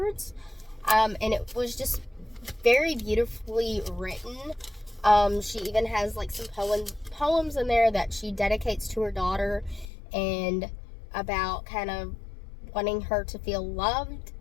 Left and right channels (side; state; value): right; drops out; at 9.9 s